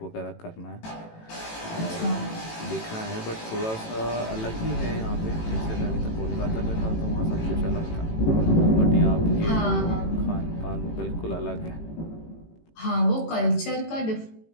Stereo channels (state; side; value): late; right; 18 ms